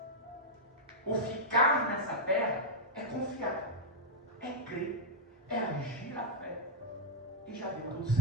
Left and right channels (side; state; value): both; normal; correlation -0.04